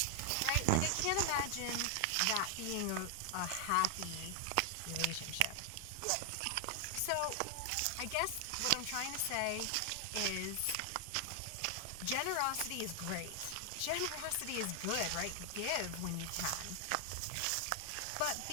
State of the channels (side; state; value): both; different; correlation 0.00